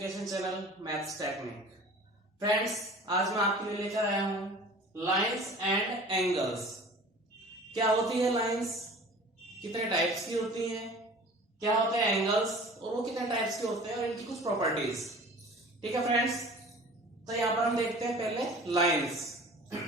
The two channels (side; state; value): both; normal; correlation 0.44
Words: channel maths technique. Friends, आज मैं आपके लिए लेकर आया हूं लाइंस एंड एंगल्स। क्या होती है लाइंस, कितने टाइप्स की होती हैं, क्या होते हैं एंगल्स और वो कितने टाइप्स के होते हैं और इनकी कुछ प्रॉपर्टीज। ठीक है फ्रेंड्स, तो यहां पर हम देखते हैं पहले लाइंस।